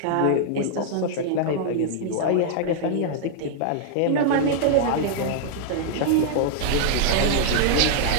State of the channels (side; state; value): both; different; correlation -0.01